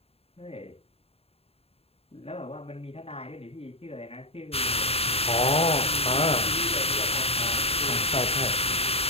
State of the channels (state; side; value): late; right; 0.29 ms